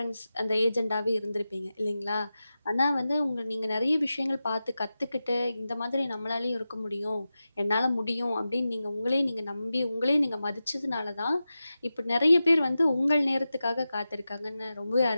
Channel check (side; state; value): both; inverted; correlation -0.93